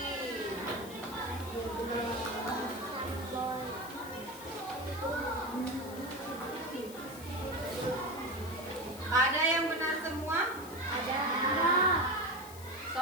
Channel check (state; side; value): noise; left; hiss, 16 dB below the sound